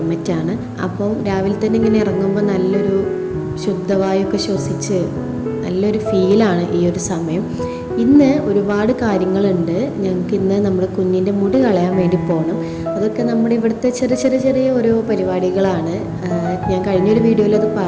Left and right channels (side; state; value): both; identical; correlation 1.00